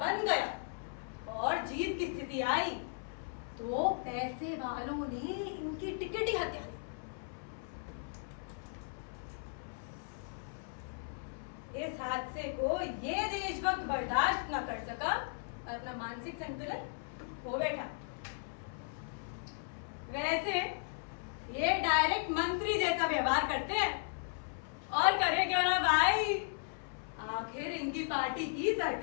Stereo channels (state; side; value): silent; right; 54 dB below the other